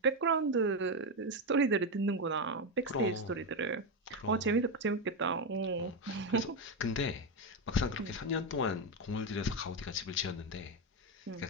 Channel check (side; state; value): both; normal; correlation 0.09